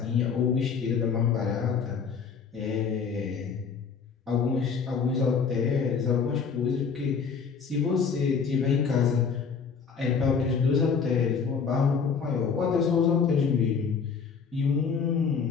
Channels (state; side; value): quieter; right; 5.9 dB